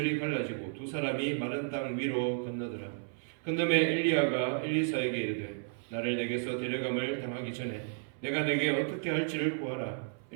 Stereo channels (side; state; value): left; silent; 56 dB below the other